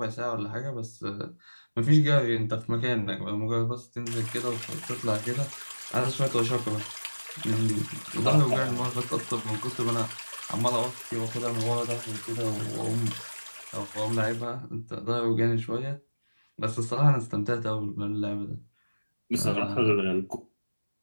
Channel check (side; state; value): both; inverted; correlation -1.00